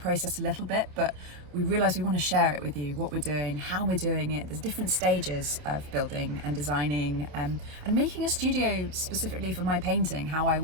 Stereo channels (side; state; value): left; late; 28 ms